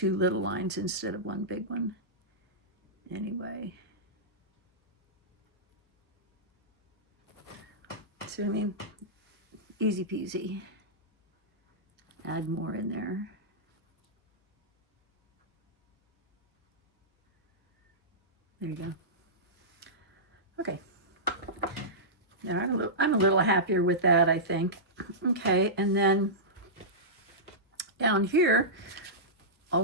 little lines instead of one big one. Anyway. See what I mean? Easy peasy. Add more in there. There you go. Okay. Now I'm a little happier with that, I think. Okay, and then down here, all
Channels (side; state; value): both; normal; correlation -0.16